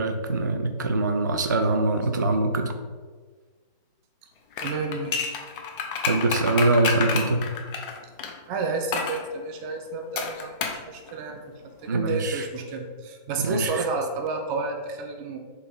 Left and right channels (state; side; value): inverted; both; correlation -0.48